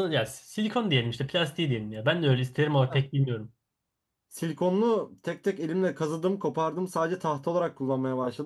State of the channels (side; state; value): both; identical; correlation 1.00